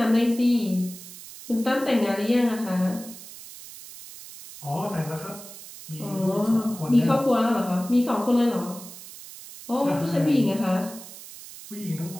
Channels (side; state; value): right; noise; hiss, 15 dB below the sound